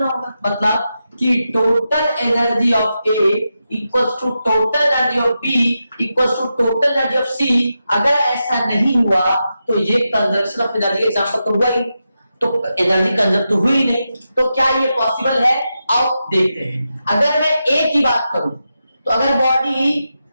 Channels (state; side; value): inverted; both; correlation -0.88